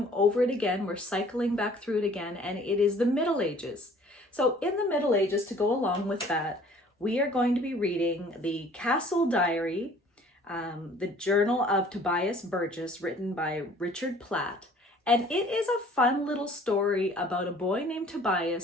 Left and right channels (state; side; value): normal; both; correlation 0.53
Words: over it again. We're cycling back through it again, and it is the Middle Ages. So in the Middle Ages, to go along with that, we are going to be reading the Castle Diary, the Journal of Tobias Burgess, written by Richard Platt. And it is a fun little story about a boy named